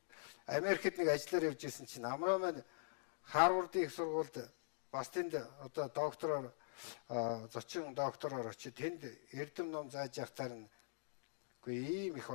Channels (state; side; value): silent; right; digital silence